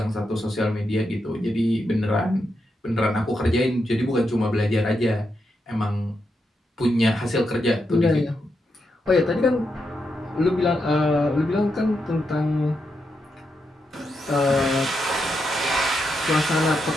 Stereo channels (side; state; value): both; normal; correlation 0.84